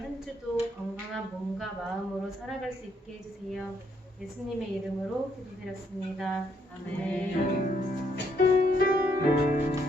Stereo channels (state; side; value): normal; both; correlation 0.72